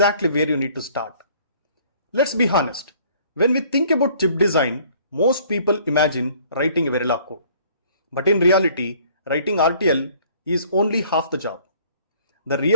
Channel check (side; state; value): both; inverted; correlation -0.57